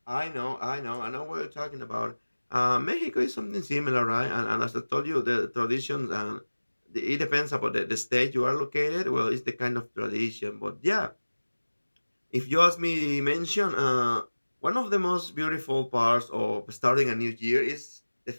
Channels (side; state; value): both; inverted; correlation -1.00